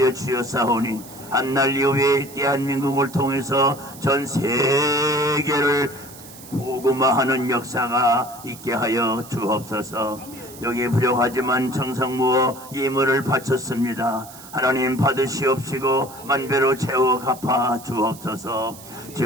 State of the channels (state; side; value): noise; right; hiss, 18 dB below the sound